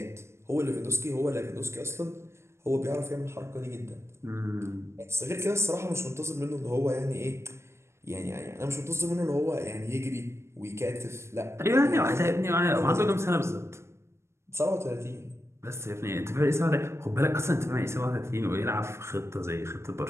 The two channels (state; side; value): late; left; 0.13 ms